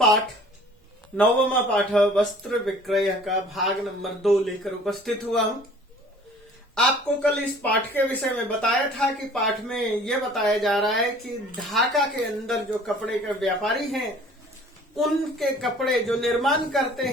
9वां पाठ वस्त्र विक्रय का भाग नंबर 2 लेकर उपस्थित हुआ हूं। आपको कल इस पाठ के विषय में बताया था कि पाठ में यह बताया जा रहा है कि ढाका के अंदर जो कपड़े के व्यापारी हैं उनके कपड़े जो निर्माण करते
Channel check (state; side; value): normal; both; correlation 0.51